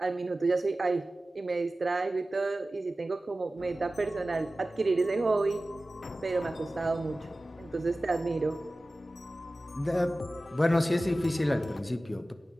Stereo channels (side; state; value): both; normal; correlation 0.96